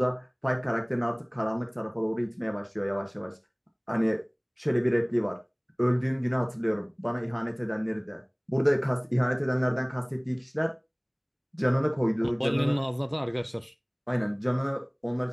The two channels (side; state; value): both; identical; correlation 1.00